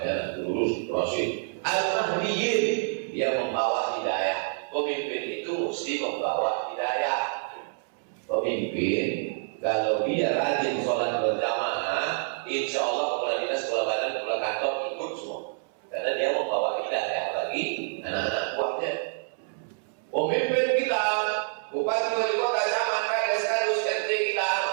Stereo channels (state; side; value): silent; left; 60 dB below the other